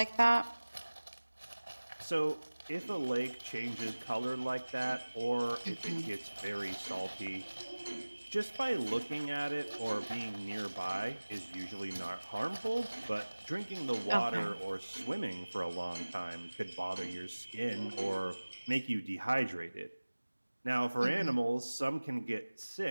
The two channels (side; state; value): both; inverted; correlation -1.00